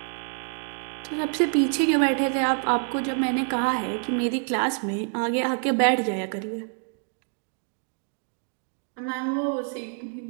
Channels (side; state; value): left; silent; 56 dB below the other